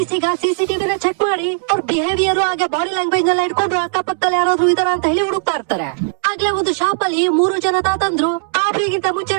ಈಗ ಸಿಸಿಟಿವಿನ ಚೆಕ್ ಮಾಡಿ ಅವ್ರ ಬಿಹೇವಿಯರ್ ಹಾಗೆ ಬಾಡಿ ಲ್ಯಾಂಗ್ವೇಜ್ ಎಲ್ಲ ಇಟ್ಕೊಂಡು ಅಕ್ಕಪಕ್ಕದಲ್ಲಿ ಯಾರಾದ್ರೂ ಇದಾರ ಅಂತ ಹೇಳಿ ಹುಡುಕ್ತಾ ಇರ್ತಾರೆ. ಆಗ್ಲೇ ಒಂದು ಶಾಪ್ ಅಲ್ಲಿ 3 ಜನ ತಾತಂದ್ರು ರಾಬರಿಗಿಂತ ಮುಂಚೆ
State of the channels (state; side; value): silent; left; 66 dB below the other